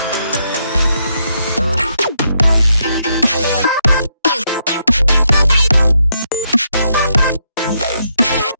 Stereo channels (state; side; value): inverted; both; correlation -0.78